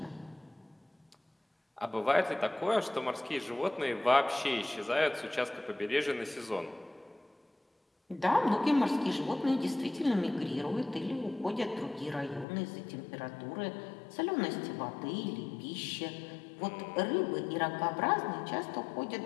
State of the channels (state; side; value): drops out; right; at 12.5 s